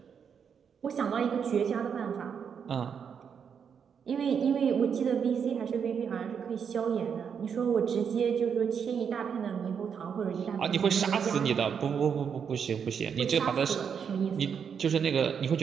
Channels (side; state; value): left; quieter; 7.1 dB